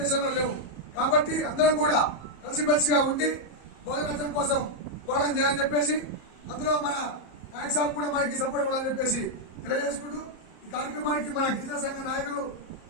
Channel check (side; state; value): right; late; 34 ms